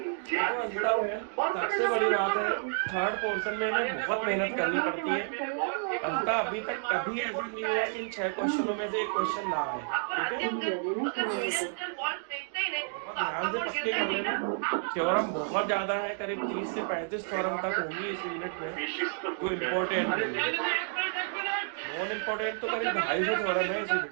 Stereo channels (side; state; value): left; silent; 57 dB below the other